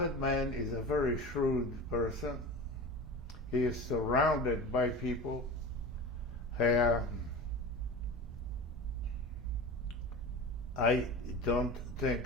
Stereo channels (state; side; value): normal; both; correlation 0.31